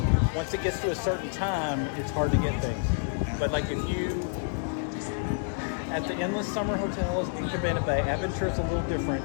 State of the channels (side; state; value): right; silent; digital silence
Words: once it gets to a certain time, it's hard to get things. Yeah. But like if you at the Endless Summer Hotels in Cabana Bay, Aventure's a little different.